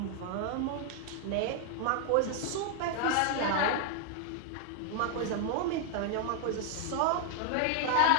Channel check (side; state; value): both; different; correlation 0.00